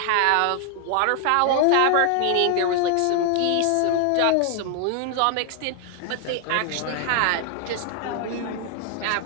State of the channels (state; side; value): different; both; correlation 0.00